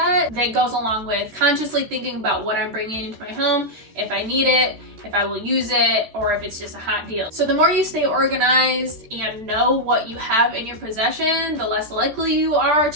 that goes along with consciously thinking about what I'm bringing into my home, if I need it, if I will use it, or if it's just a hot deal. So the more you stay organized and know what you have in your possession, the less likely you are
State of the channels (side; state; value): left; late; 13 ms